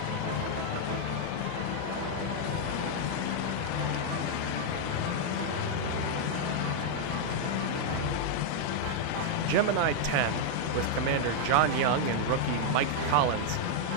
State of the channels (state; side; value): different; both; correlation -0.01